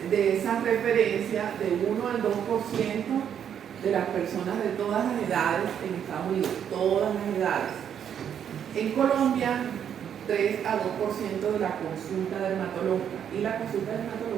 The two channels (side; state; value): left; quieter; 8.8 dB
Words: de esa referencia de 1 al 2% de las personas de todas las edades en Estados Unidos, todas las edades. En Colombia, 3 a 2% de la consulta dermatológica, y la consulta